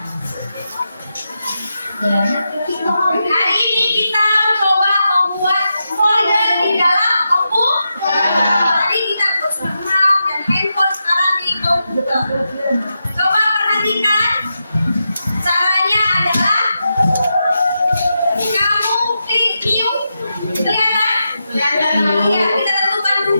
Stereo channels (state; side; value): inverted; both; correlation -0.87